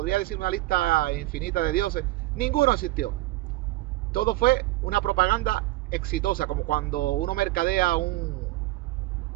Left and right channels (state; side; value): quieter; left; 18.7 dB